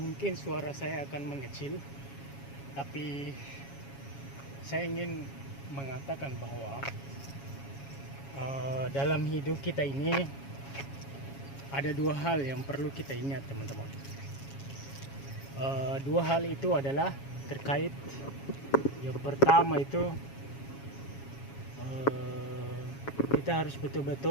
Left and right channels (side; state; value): right; late; 7.3 ms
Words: suara saya akan mengecil, tapi saya ingin mengatakan bahwa dalam hidup kita ini ada dua hal yang perlu kita ingat, teman-teman. Dua hal itu adalah terkait. Yang pertama itu kita harus